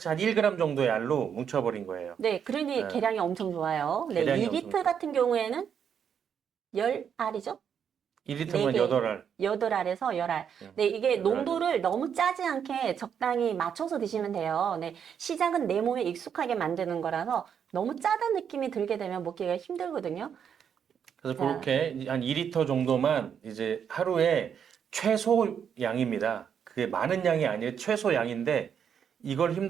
한 1g 정도의 알로 뭉쳐버린 거예요. 네, 그러니 예, 계량이 엄청 좋아요. 네, 계량이 엄청 2리터 좋아요. 같은 경우에는 10알이죠? 1리터면 4개, 8알. 8알에서 10알. 예, 네, 이게 8알 정도. 농도를 너무 짜지 않게 적당히 맞춰서 드시면 돼요. 네, 시작은 내 몸에 익숙하게 만드는 거라서 너무 짜다는 느낌이 들게 되면 먹기가 힘들거든요. 그래서 자, 그렇게 한 2리터 정도만 이제 하루에 최소 양입니다. 그게 많은 양이 아니에요. 최소 양인데 이걸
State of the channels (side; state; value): left; quieter; 7.9 dB